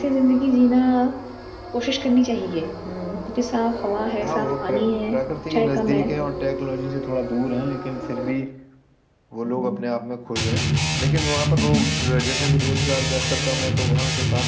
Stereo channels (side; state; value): both; identical; correlation 1.00